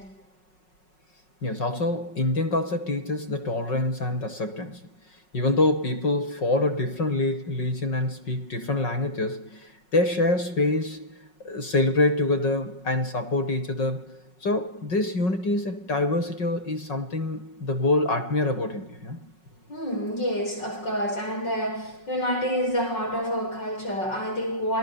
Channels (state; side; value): late; right; 5.5 ms